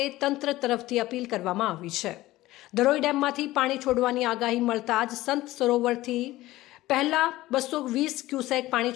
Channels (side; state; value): right; quieter; 17.0 dB